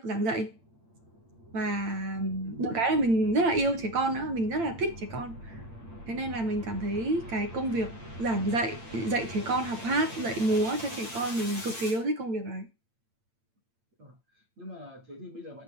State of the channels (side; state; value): left; late; 8.8 ms